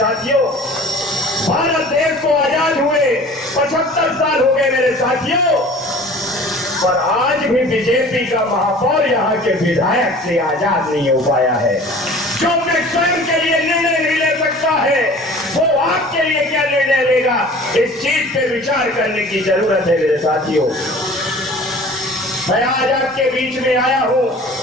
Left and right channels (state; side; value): normal; both; correlation 0.45